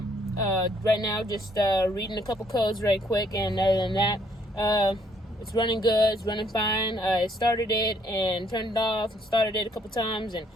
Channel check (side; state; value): both; normal; correlation 0.67